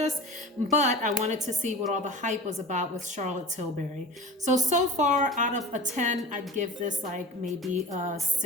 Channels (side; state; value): both; normal; correlation 0.37